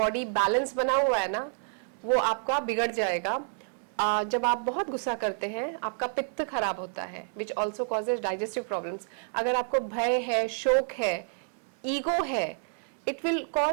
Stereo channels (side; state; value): left; silent; digital silence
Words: बैलेंस बना हुआ है ना, वो आपका बिगड़ जाएगा. जब आप बहुत गुस्सा करते हैं आपका पित्त खराब होता है, which also causes digestive problems. अगर आपको भय है, शोक है, ईगो है, it will